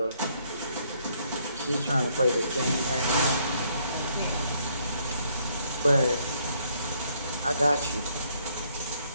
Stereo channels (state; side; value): inverted; both; correlation -0.69